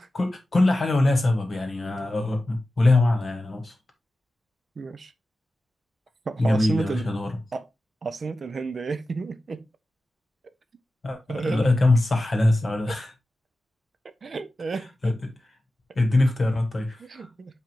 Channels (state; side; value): normal; both; correlation 0.94